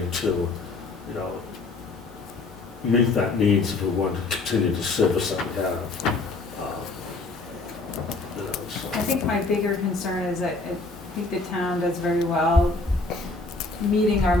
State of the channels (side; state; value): right; quieter; 3.5 dB